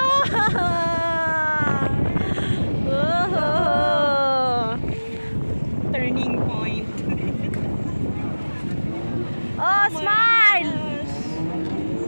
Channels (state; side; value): inverted; both; correlation -1.00